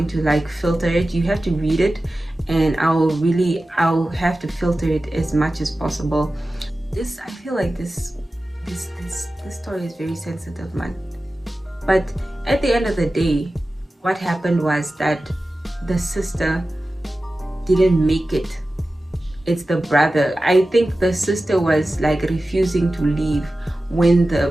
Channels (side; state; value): both; normal; correlation 0.95